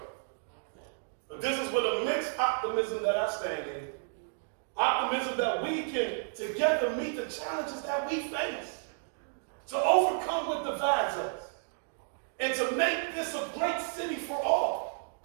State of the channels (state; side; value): silent; left; digital silence